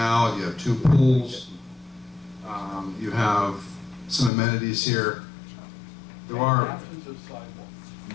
you have 2 pools, you have some amenities here. There are,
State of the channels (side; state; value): right; drops out; at 4.3 s